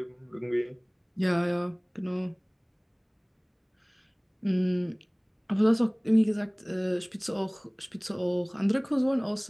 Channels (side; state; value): both; identical; correlation 1.00